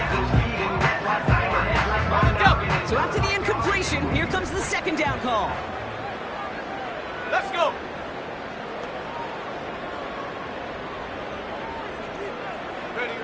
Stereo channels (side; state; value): both; identical; correlation 1.00